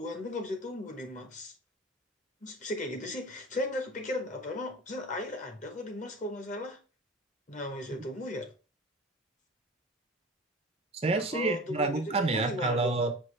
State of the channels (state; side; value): normal; both; correlation 0.36